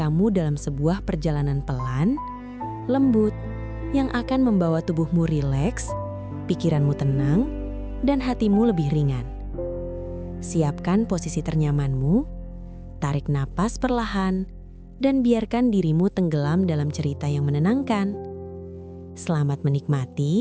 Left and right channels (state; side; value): identical; both; correlation 1.00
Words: dalam sebuah perjalanan pelan, lembut, yang akan membawa tubuhmu rileks, pikiranmu tenang, dan hatimu lebih ringan. Siapkan posisi ternyamanmu, tarik napas perlahan, dan biarkan dirimu tenggelam dalam cerita yang menenangkan. Selamat